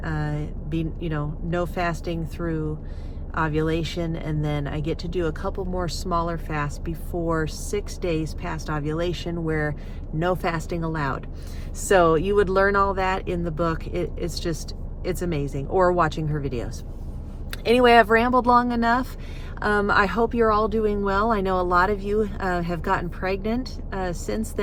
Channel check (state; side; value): identical; both; correlation 1.00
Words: no fasting through ovulation, and then I get to do a couple more smaller fasts before 6 days past ovulation, where no fasting allowed. So you would learn all that in the book. It's amazing, or watching her videos. Anyway, I've rambled long enough. I hope you're all doing well. I know a lot of you have gotten pregnant since